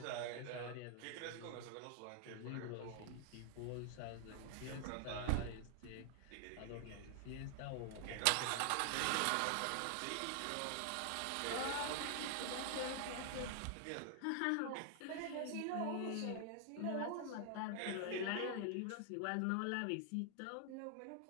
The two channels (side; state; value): both; different; correlation 0.00